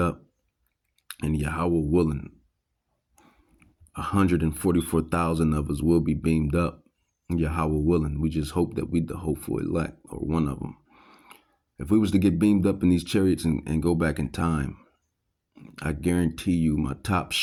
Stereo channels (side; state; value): both; identical; correlation 1.00